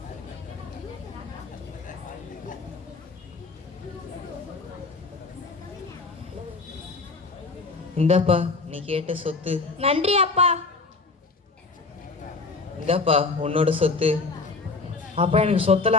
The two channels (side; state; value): right; quieter; 3.9 dB